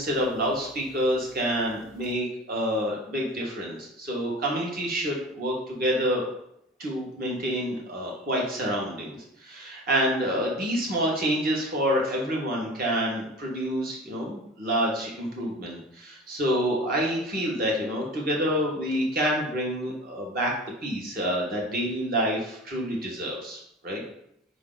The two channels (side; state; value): both; normal; correlation 0.36